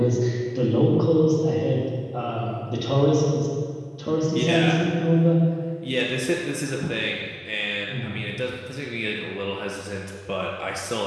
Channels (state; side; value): identical; both; correlation 1.00